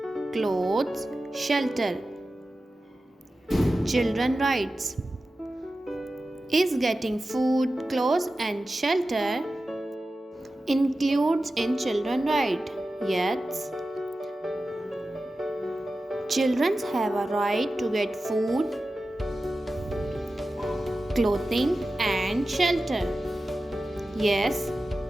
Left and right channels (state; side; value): normal; both; correlation 0.94